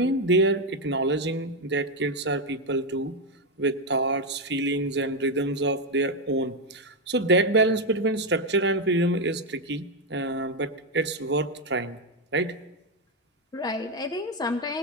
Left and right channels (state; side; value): normal; both; correlation 0.05